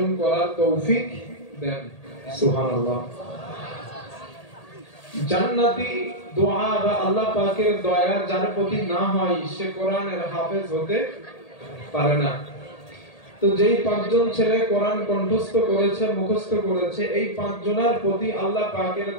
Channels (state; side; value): late; right; 1.8 ms